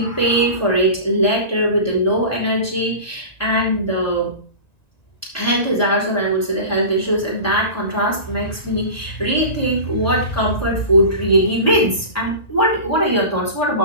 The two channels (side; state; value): right; late; 1.9 ms